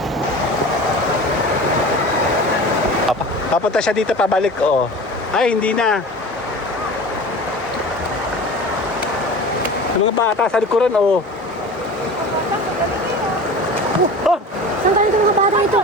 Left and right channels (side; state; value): both; normal; correlation 0.36